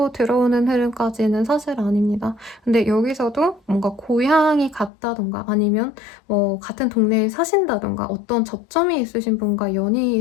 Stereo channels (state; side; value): drops out; right; at 4.9 s